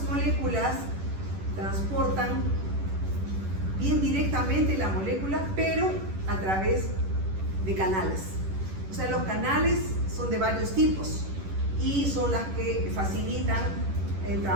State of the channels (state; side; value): late; left; 10 ms